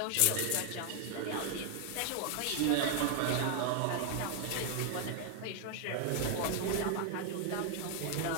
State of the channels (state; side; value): different; both; correlation 0.00